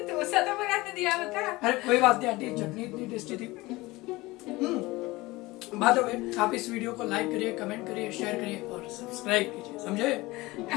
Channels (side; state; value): right; quieter; 20.8 dB